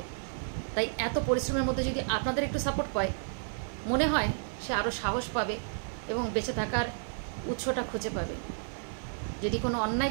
তাই এত পরিশ্রমের মধ্যে যদি আপনাদের একটু সাপোর্ট পায়, মনে হয় সে আরও সাহস পাবে এবং বেঁচে থাকার উৎসটা খুঁজে পাবে। যদি কোনো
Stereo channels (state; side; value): silent; left; 57 dB below the other